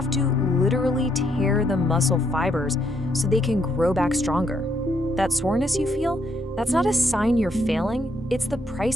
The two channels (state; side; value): normal; both; correlation 0.74